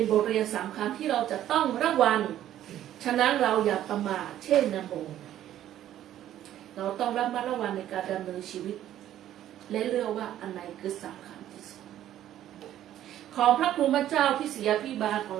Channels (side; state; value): left; quieter; 12.1 dB